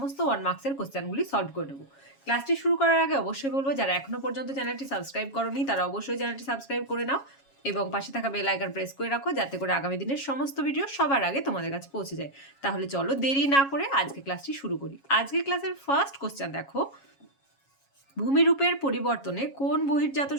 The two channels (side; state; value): right; late; 7.3 ms